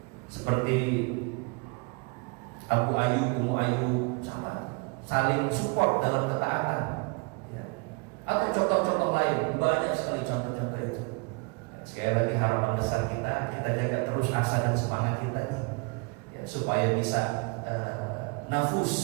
Seperti Abu Ayyub, Ummu Ayyub, sama saling support dalam ketaatan. Ya. Atau contoh-contoh lain, banyak sekali contoh-contoh itu. Sekali lagi harapan besar kita jaga terus asa dan semangat kita ya, supaya bisa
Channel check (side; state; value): left; quieter; 30.7 dB